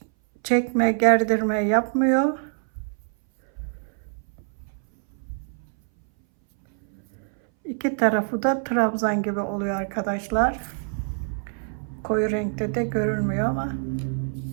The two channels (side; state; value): left; silent; 60 dB below the other